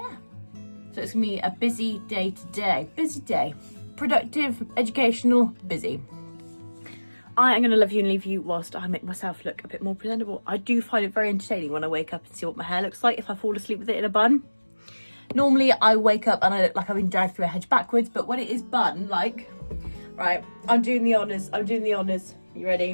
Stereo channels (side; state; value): both; inverted; correlation -1.00